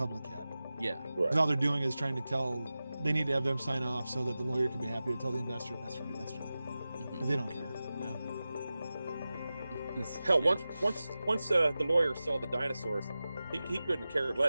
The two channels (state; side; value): inverted; both; correlation -0.95